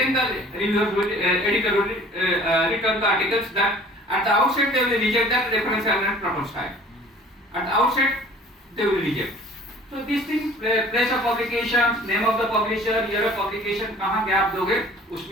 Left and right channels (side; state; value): both; normal; correlation 0.49